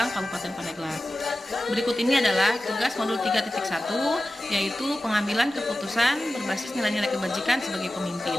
Kabupaten Pandeglang. Berikut ini adalah tugas modul 3.1, yaitu pengambilan keputusan berbasis nilai-nilai kebajikan sebagai pemimpin.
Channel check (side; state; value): both; normal; correlation 0.94